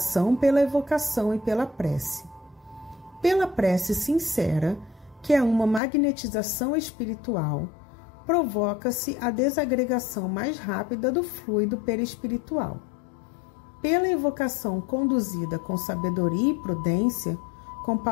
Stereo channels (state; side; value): drops out; right; at 5.8 s